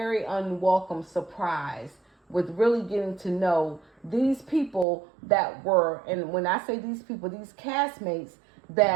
unwelcome surprise with really getting to know these people that were, and when I say these people, these castmates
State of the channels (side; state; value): left; drops out; at 4.9 s